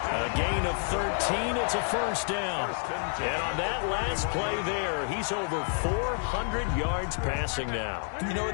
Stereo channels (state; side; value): silent; right; 57 dB below the other